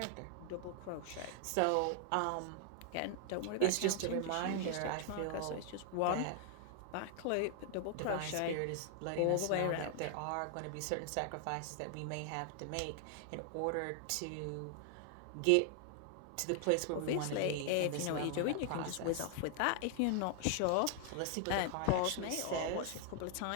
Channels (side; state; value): both; different; correlation 0.00